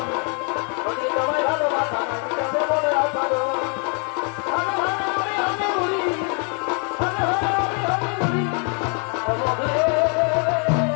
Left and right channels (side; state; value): right; quieter; 38.2 dB